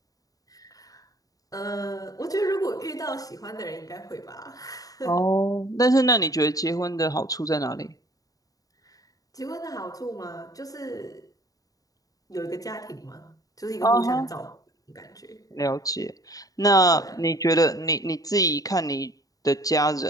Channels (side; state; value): right; late; 0.18 ms